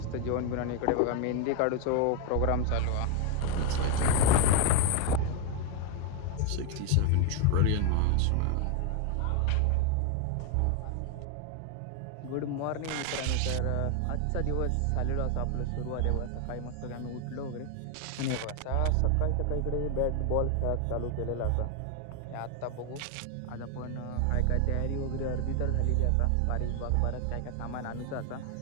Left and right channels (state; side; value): different; both; correlation 0.01